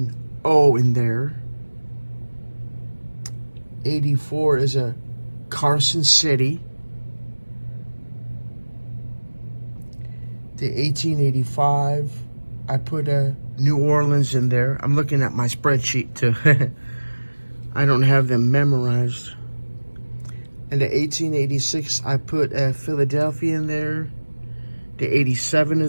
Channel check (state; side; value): inverted; both; correlation -1.00